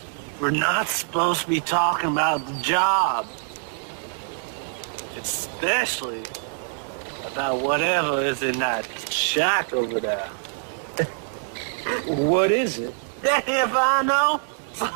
We're not supposed to be talking about the job. Especially about whatever is in that shack over there. What is it? If I know,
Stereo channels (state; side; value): silent; left; digital silence